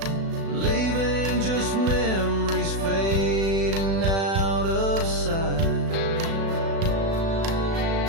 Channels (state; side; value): late; left; 36 ms